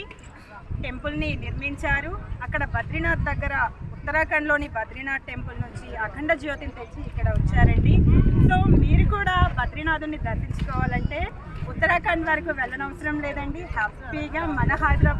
టెంపుల్ని నిర్మించారు. అక్కడ బద్రీనాథ్ దగ్గర ఉత్తరాఖండ్లోని బద్రీనాథ్ టెంపుల్ నుంచి అఖండ జ్యోతిని తెచ్చి ఇక్కడ వచ్చారండి. సో మీరు కూడా బద్రీనాథుని దర్శించుకోవాలంటే ఉత్తరాఖండ్ వరకు వెళ్ళనవసరం లేదండి. హ్యాపీగా మన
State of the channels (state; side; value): identical; both; correlation 1.00